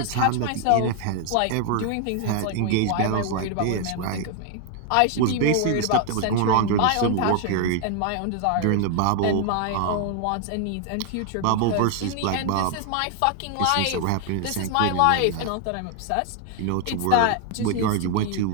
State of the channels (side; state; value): both; different; correlation 0.00